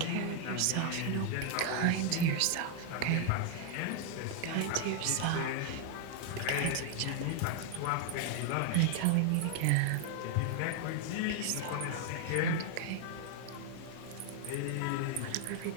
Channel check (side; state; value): both; different; correlation 0.00